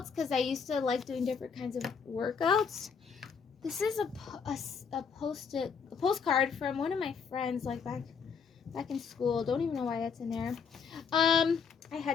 because I used to like doing different kinds of workouts. This is a postcard from one of my friends, like back in school. Don't even know why that's in there. I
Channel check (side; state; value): right; quieter; 6.1 dB